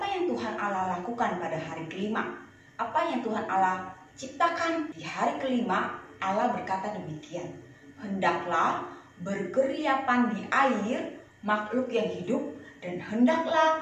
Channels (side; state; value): both; identical; correlation 1.00